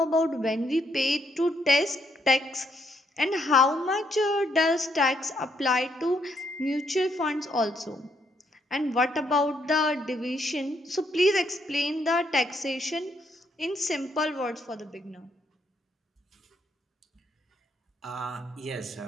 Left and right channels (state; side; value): normal; both; correlation 0.74